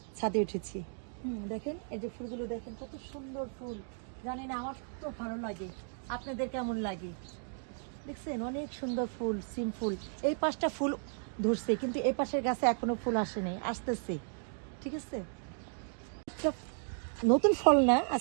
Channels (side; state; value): left; silent; 55 dB below the other